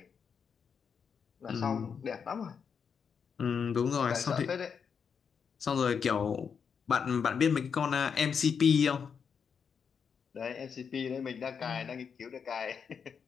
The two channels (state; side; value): quieter; right; 6.6 dB